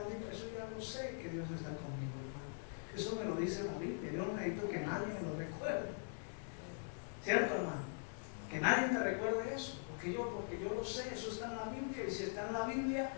Eso ya lo sé, que Dios está conmigo, hermano. Eso me lo dice la Biblia. Yo no necesito que nadie me lo recuerde. ¿Cierto, hermano? Que nadie me recuerde eso. Porque yo lo sé, eso está en la Biblia. Y si está en la Biblia,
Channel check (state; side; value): silent; right; digital silence